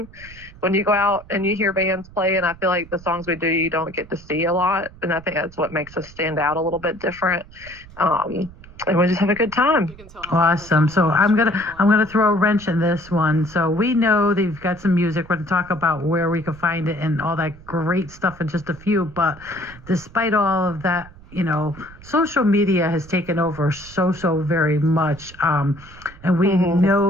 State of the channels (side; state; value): right; noise; rumble, 20 dB below the sound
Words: When you go out and you hear bands play, and I feel like the songs we do, you don't get to see a lot. And I think that's what makes us stand out a little bit different. And we just have a good time. Awesome. So I'm gonna throw a wrench in this one. So we know that you've got some music. We're going to talk about where we can find it and all that great stuff in just a few. But despite all of that, social media has taken over so very much. And we